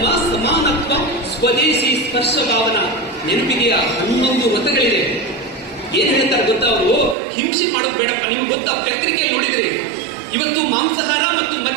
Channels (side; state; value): left; drops out; at 7.2 s